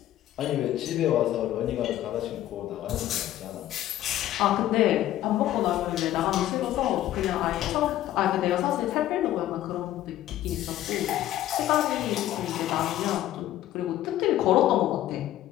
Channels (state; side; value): quieter; right; 13.4 dB